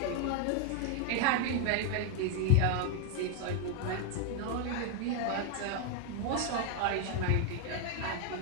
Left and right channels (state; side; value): different; both; correlation 0.00